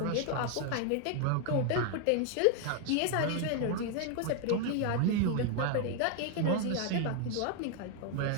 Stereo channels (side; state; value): both; different; correlation 0.00